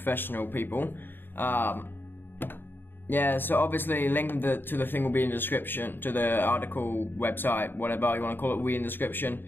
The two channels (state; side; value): late; right; 0.096 ms